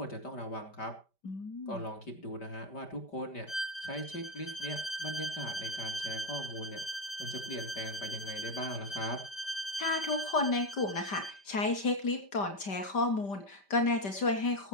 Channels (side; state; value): right; late; 5.1 ms